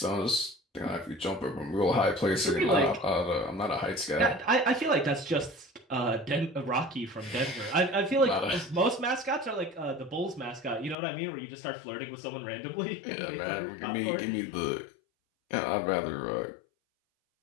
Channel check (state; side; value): drops out; right; at 11.0 s